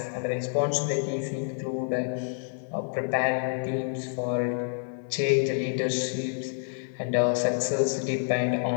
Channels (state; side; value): silent; right; 59 dB below the other